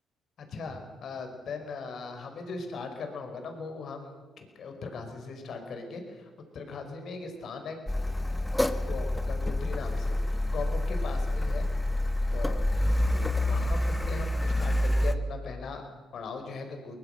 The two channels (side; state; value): both; normal; correlation 0.95